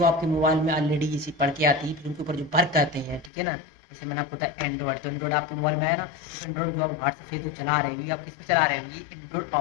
आपके मोबाइल में ऑलरेडी इसी पढ़ के आती है, फिर उनके ऊपर जो वर्क करते हैं, ठीक है ना। जैसे मैंने आपको बताया एंड्रॉयड, तो एंड्रॉयड आपके मोबाइल में है ना, तो एंड्रॉयड जो आप व्हाट्सएप फेसबुक चला रहे हो, ये आप किस पे चला रहे हो, ये एंड्रॉयड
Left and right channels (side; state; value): right; drops out; at 3.3 s